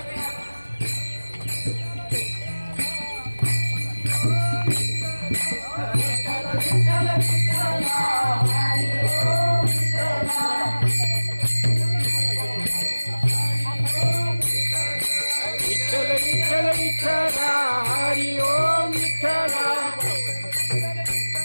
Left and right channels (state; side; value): inverted; both; correlation -1.00